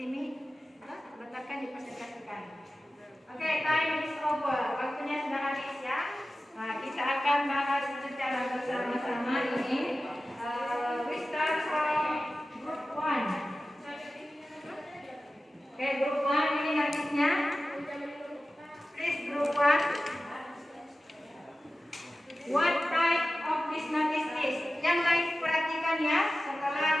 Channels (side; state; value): both; normal; correlation 0.95